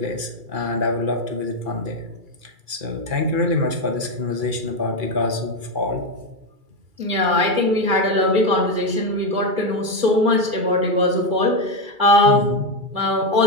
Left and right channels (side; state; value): left; late; 2.3 ms